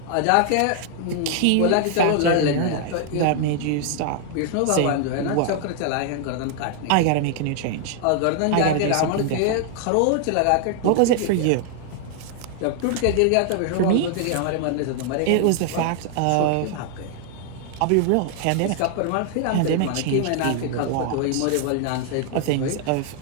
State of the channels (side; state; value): both; different; correlation 0.00